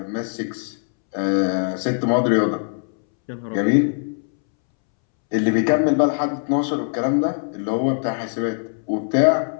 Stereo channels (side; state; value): right; silent; 64 dB below the other